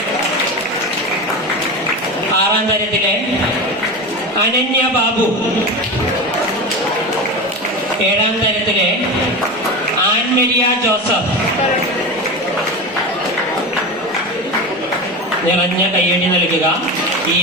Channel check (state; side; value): normal; both; correlation 0.24